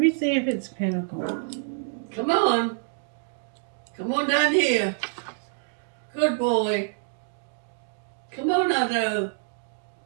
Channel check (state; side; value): silent; left; digital silence